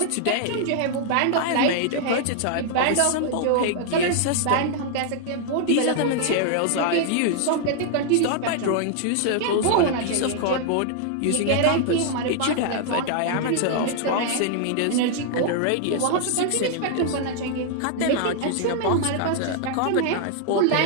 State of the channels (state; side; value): different; both; correlation -0.01